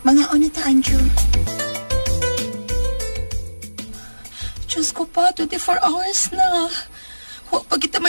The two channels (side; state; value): both; inverted; correlation -1.00